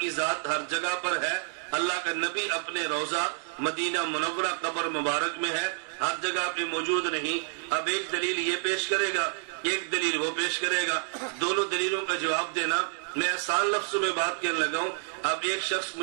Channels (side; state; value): left; silent; 59 dB below the other